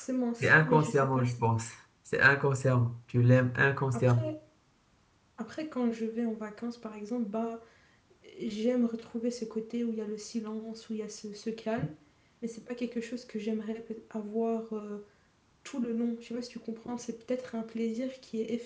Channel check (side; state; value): both; identical; correlation 1.00